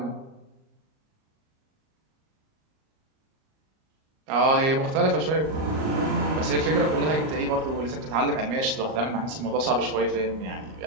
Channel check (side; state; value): left; late; 38 ms